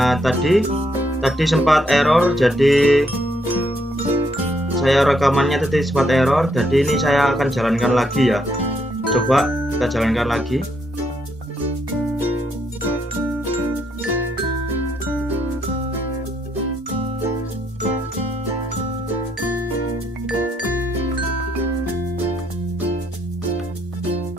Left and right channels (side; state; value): both; normal; correlation 0.74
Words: tadi sempat error, jadi saya rekamannya tadi sempat error, jadi ini saya akan jalankan lagi ya. Coba kita jalankan lagi.